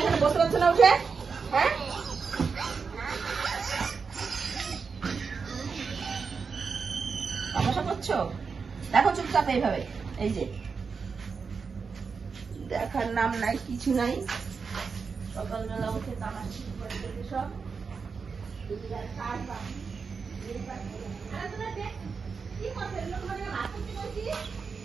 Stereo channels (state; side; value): quieter; left; 5.3 dB